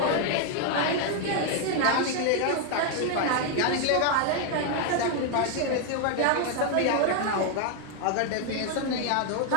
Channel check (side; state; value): both; different; correlation 0.01